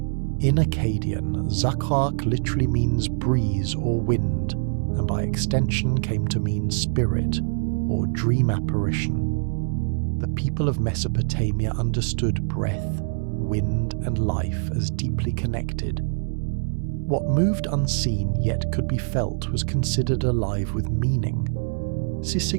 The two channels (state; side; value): silent; left; 61 dB below the other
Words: In Akkadian, Zakak literally means breeze or wind, and by extension came to mean spirit or dream apparition. The people of Mesopotamia understood breath, wind, and life as deeply connected. What moved unseen yet could be felt was considered alive with meaning.